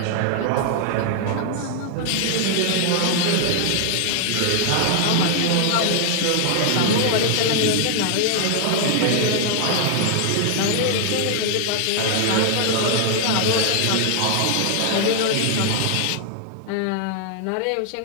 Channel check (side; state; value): both; different; correlation 0.00